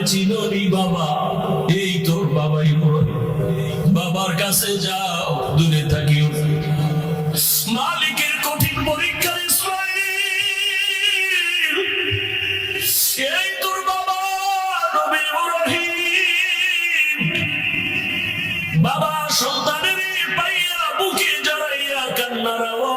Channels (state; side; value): identical; both; correlation 1.00